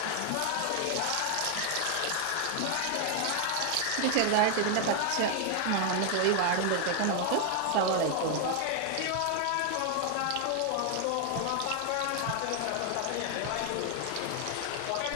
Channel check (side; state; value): both; different; correlation 0.00